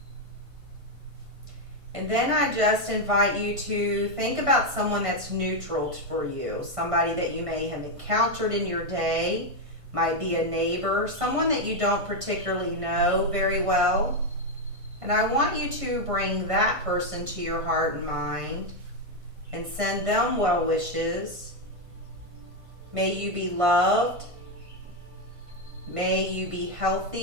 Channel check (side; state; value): left; late; 1.5 ms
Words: And then I just invite you to think about someone that's neutral for you, somebody that you may have encountered in your day, might be a neighbor, someone that you don't particularly know very well. And I want you to bring that person to your heart and mind and send them well wishes. May you be loved. May you be